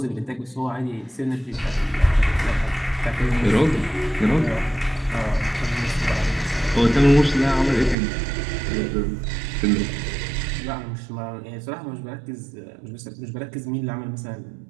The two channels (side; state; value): left; drops out; at 8.0 s